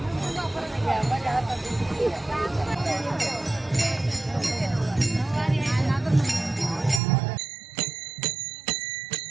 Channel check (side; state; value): left; drops out; at 7.0 s